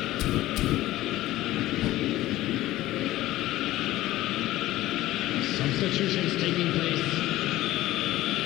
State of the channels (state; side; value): quieter; right; 16.0 dB